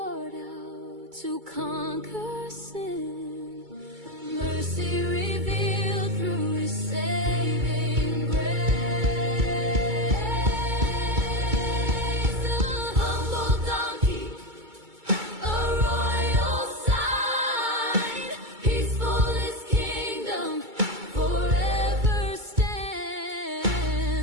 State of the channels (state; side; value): late; left; 2.2 ms